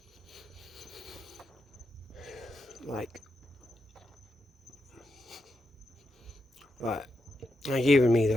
Like even me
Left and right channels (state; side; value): normal; both; correlation 0.85